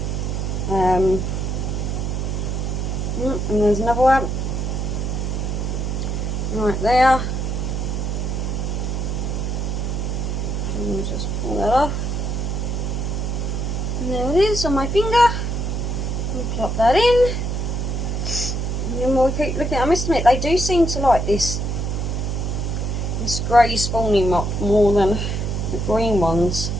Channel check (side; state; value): right; noise; hum, 1 dB below the sound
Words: And there's another one right there. And just pull that off. And there it is on my finger. And plop that in. And then we'll keep looking. I must admit, they do seem to like this grey spawning mop more than the green ones